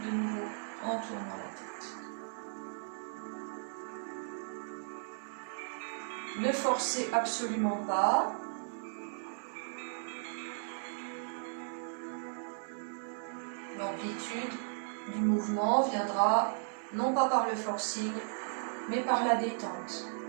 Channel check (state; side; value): silent; left; digital silence